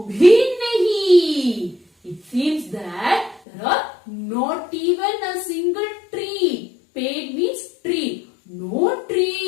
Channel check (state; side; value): drops out; right; at 3.4 s